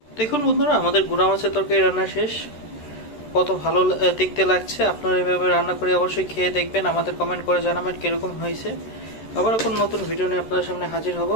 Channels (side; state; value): right; late; 13 ms